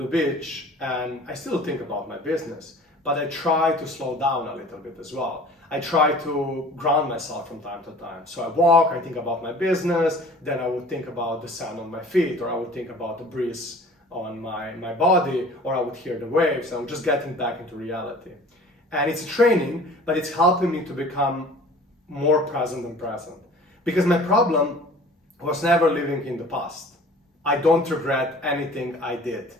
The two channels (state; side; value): normal; both; correlation 0.46